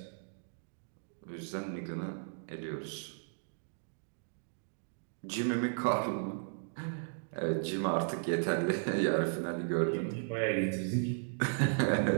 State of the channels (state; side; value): silent; left; digital silence